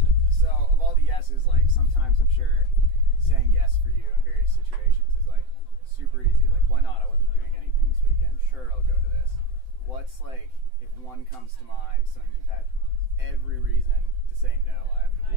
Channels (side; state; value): left; late; 7.8 ms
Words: So, of all the yeses, like, sometimes I'm sure saying yes for you in various situations is, like, super easy. Like, why not? I wasn't doing anything this weekend. Sure, I'll go to this. What's, like, if one comes to mind, something you've had every reason to say no? I have to